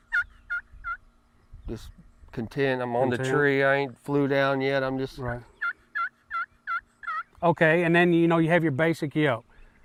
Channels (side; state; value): both; identical; correlation 1.00